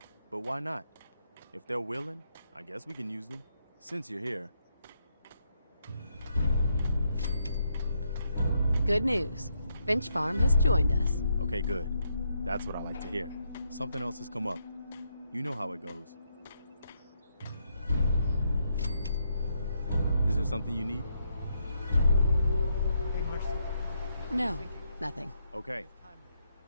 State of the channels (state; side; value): inverted; both; correlation -0.78